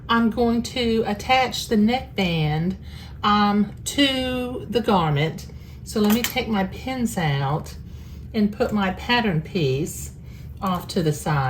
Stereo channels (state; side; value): identical; both; correlation 1.00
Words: I'm going to attach the neckband to the garment. So let me take my pins out and put my pattern piece off to the